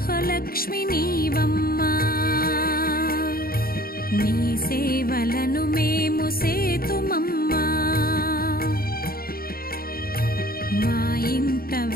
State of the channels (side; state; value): right; late; 0.43 ms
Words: నీవమ్మా నీ సేవలను మేము సేతుమమ్మా మా ఇంట